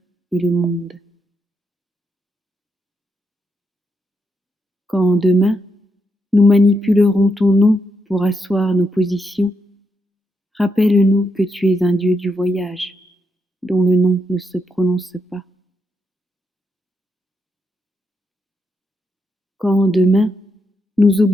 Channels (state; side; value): normal; both; correlation 0.81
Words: et le monde. Quand demain nous manipulerons ton nom pour asseoir nos positions, rappelle-nous que tu es un Dieu du voyage, dont le nom ne se prononce pas. Quand demain nous